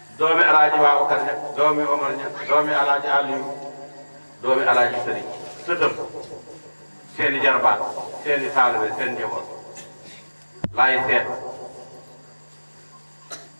doomi alaaji Babacar ña doomi Omar ña doomi alaaji Aliou doomi alaaji Sëriñ sëtëm seeni jarbaat seeni taalibe seen njaboot laay seet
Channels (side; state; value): both; inverted; correlation -1.00